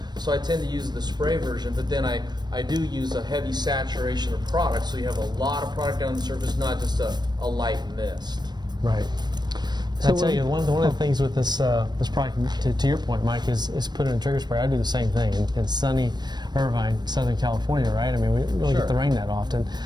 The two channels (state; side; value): late; left; 0.21 ms